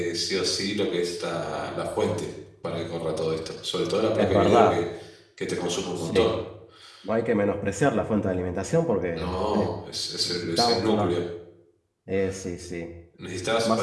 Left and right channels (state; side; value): identical; both; correlation 1.00